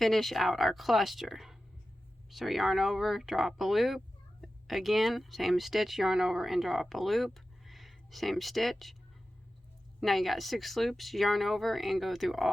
out our cluster. So yarn over, draw up a loop, again same stitch, yarn over and draw up a loop, same stitch. Now you got 6 loops, yarn over and go through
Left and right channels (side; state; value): both; normal; correlation 0.93